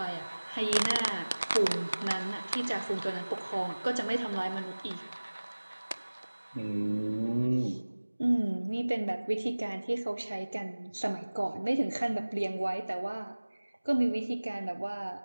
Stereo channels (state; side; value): inverted; both; correlation -1.00